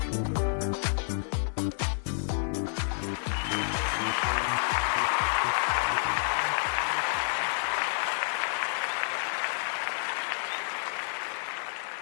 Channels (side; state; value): right; silent; 58 dB below the other